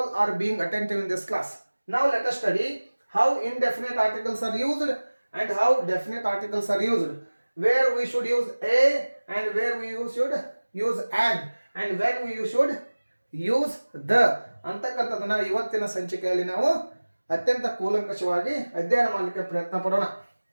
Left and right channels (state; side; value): inverted; both; correlation -1.00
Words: are being attentive in this class. Now let us study how indefinite articles are used and how definite articles are used. Where we should use a and where we should use an and when we should use the ಅಂತಕ್ಕಂಥದ್ದನ್ನ ಇವತ್ತಿನ ಸಂಚಿಕೆಯಲ್ಲಿ ನಾವು ಅತ್ಯಂತ ಕೂಲಂಕಷವಾಗಿ ಅಧ್ಯಯನ ಮಾಡಲಿಕ್ಕೆ ಪ್ರಯತ್ನ ಪಡೋಣ.